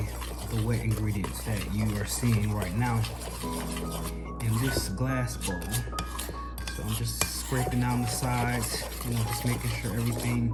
the wet ingredients that you are seeing right now in this glass bowl. So I'm just scraping down the sides, you know, just making sure everything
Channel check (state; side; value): identical; both; correlation 1.00